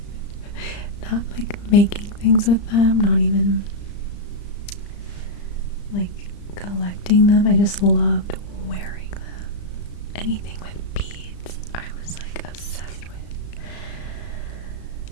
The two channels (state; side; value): late; right; 35 ms